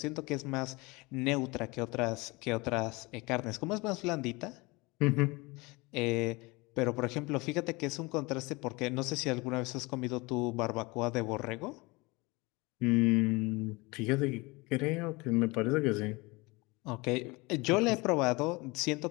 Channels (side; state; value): right; quieter; 24.8 dB